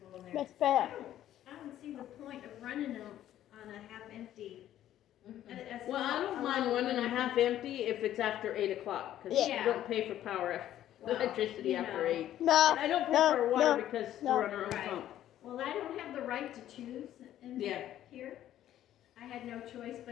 in there. Miss Beth. I don't see the point of running them on a half empty. Well, I don't mind running them half empty if it's after 8 o'clock, because Yeah. you don't pay for power, Well, electricity you after know. 8. No, And I don't pay no, for water no, because no. we're on our own Right. pump. Well, I don't have the right to choose in Yeah. here. I had no choice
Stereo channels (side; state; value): right; quieter; 12.2 dB